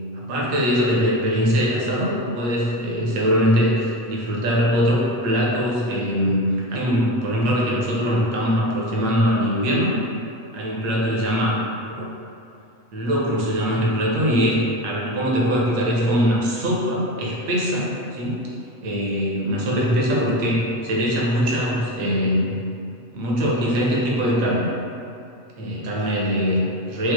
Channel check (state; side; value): late; left; 8.2 ms